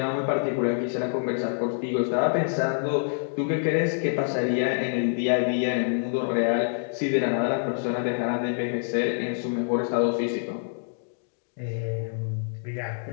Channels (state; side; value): silent; right; digital silence